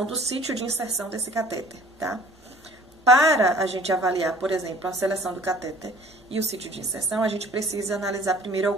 do sítio de inserção desse catéter, tá? Para a gente avaliar, por exemplo, a seleção do catéter e o sítio de inserção, a gente precisa analisar primeiro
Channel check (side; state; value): both; normal; correlation 0.51